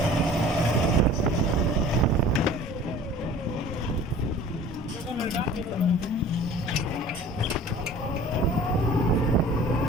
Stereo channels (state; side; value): normal; both; correlation 0.46